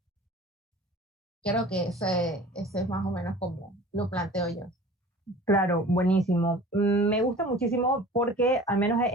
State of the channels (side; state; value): both; normal; correlation 0.43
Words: Creo que ese es más o menos como lo planteo yo. Claro, buenísimo. Me gusta muchísimo porque, al menos